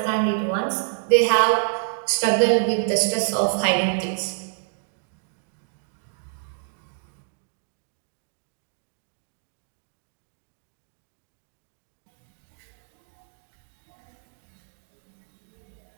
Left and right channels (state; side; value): silent; left; digital silence